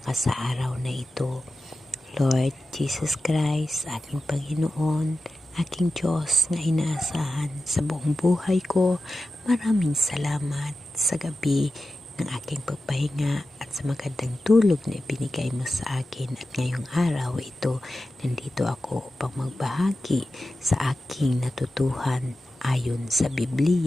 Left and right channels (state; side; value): normal; both; correlation 0.93